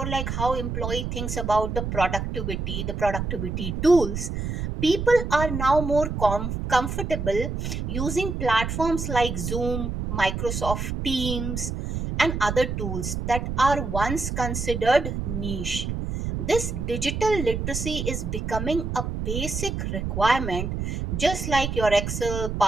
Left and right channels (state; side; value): noise; right; rumble, 3 dB below the sound